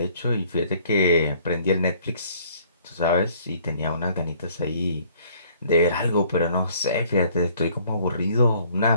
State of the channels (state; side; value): inverted; both; correlation -0.59